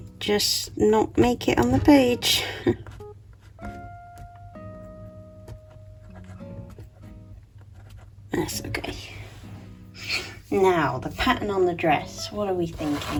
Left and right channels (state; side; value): identical; both; correlation 1.00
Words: just not make it on the page. That's okay. Now, the pattern on the dress, what are we